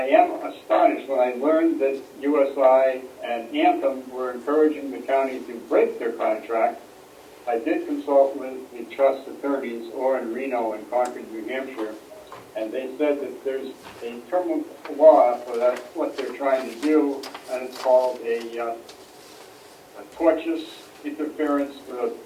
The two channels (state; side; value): identical; both; correlation 1.00